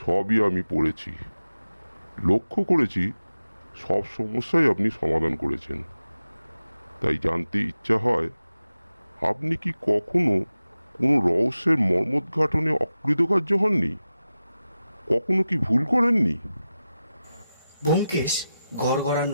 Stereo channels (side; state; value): both; inverted; correlation -0.93